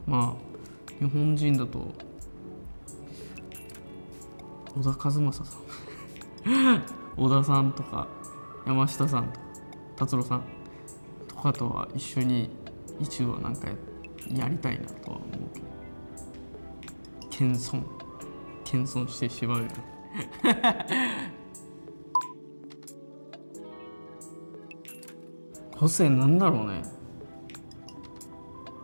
日本人だと小田和正さん小田さんとか山下さんとか達郎さんとかとは一緒に一度はなんかやりたいなとは思うけど、謙遜してしまうよね個性なんだろうね。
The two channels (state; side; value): inverted; both; correlation -1.00